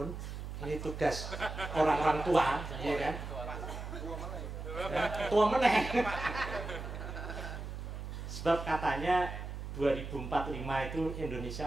ini tugas orang-orang tua, ya kan? Tua meneh. Sebab katanya 2045 itu Indonesia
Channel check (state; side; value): noise; right; hum, 7 dB below the sound